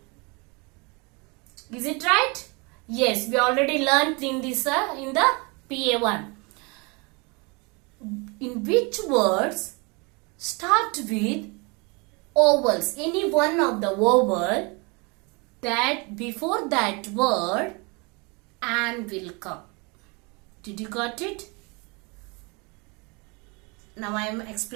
Is it right? Yes, we already learned in this in the PA1. In which words start with vowels? Any one of the vowel that before that word and will come. Did you got it? Now I am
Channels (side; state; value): left; quieter; 29.4 dB